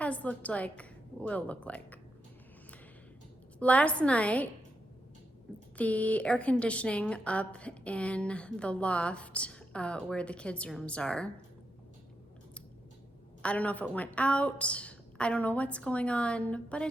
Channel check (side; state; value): both; normal; correlation 0.84